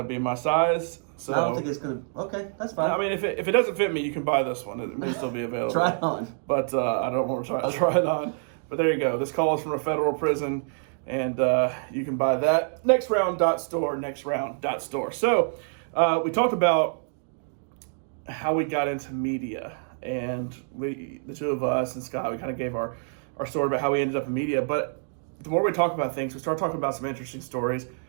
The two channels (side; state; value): left; silent; 60 dB below the other